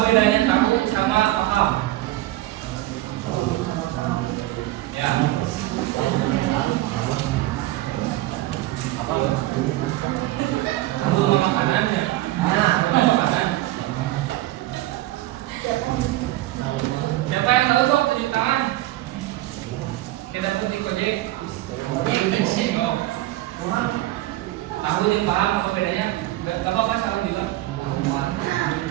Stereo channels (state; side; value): quieter; left; 16.8 dB